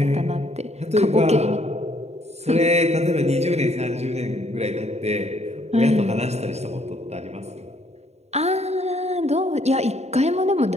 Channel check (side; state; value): left; late; 0.31 ms